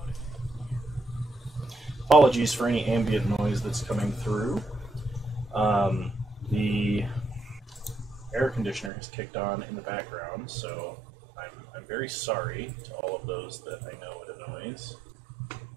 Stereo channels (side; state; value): left; drops out; at 8.9 s